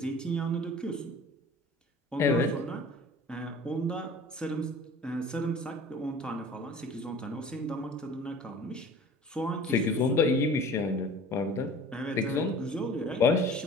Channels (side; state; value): both; normal; correlation 0.43